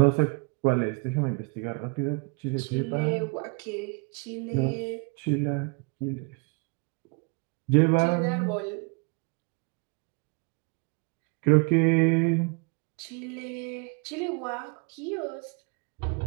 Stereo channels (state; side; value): quieter; left; 31.6 dB